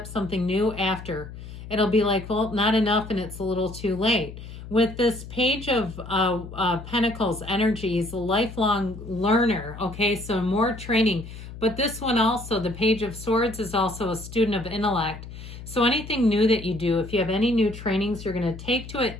something new after. It'll be like, well, not enough and it's a little too late. With this Page of Pentacles energy, is a lifelong learner, okay? So more training. But this one also, the Page of Swords, is also a student of intellect. So anything new that you do, if you have any new trainings, you're going to take to it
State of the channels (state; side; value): noise; left; hum, 13 dB below the sound